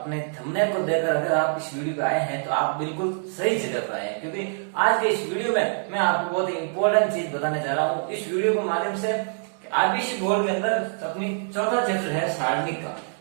थंबनेल को देखकर अगर आप इस वीडियो पे आए हैं तो आप बिल्कुल सही जगह पर आए हैं, क्योंकि आज के इस वीडियो में मैं आपको बहुत ही इंपॉर्टेंट चीज बताने जा रहा हूँ। इस वीडियो के माध्यम से आईपीसी बोर्ड के अंदर अपनी चौथा चैप्टर है सारणिक का,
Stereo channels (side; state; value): left; silent; digital silence